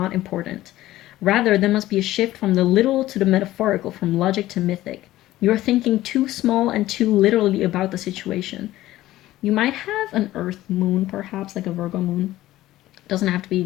important. Rather, there must be a shift from the literal to the metaphorical, from logic to mythic. You are thinking too small and too literally about the situation. You might have an Earth moon, perhaps, like a Virgo moon. Doesn't have to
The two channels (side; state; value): right; quieter; 15.5 dB